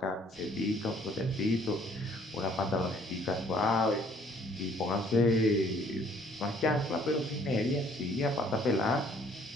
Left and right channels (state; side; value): normal; both; correlation 0.60